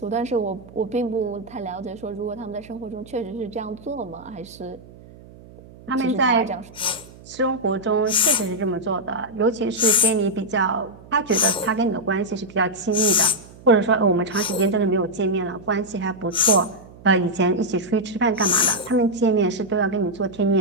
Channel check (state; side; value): noise; right; hum, 21 dB below the sound